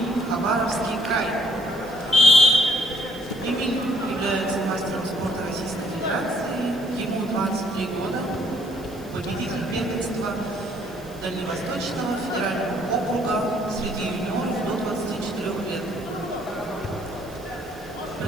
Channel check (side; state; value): right; noise; hiss, 23 dB below the sound